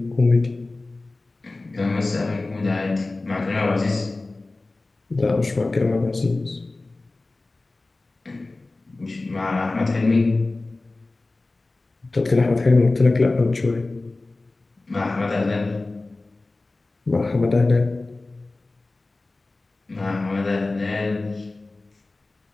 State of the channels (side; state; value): right; quieter; 3.2 dB